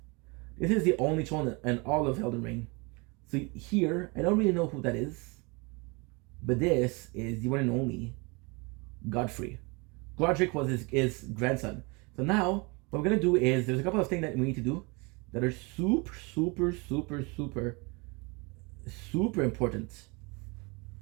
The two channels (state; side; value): quieter; left; 28.5 dB